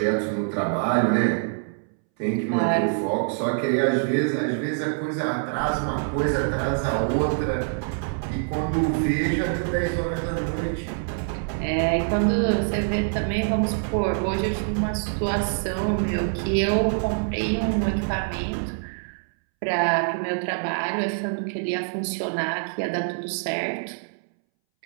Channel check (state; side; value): silent; left; 62 dB below the other